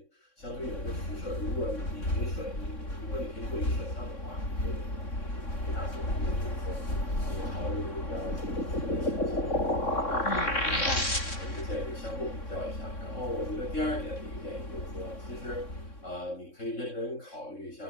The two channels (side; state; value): right; late; 3.6 ms